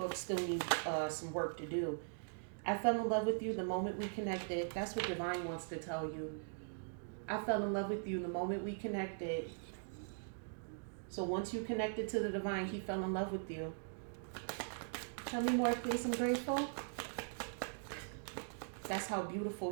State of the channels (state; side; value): silent; left; digital silence